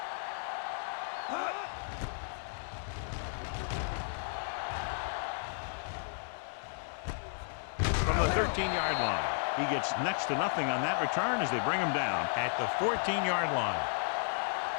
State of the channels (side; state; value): right; silent; digital silence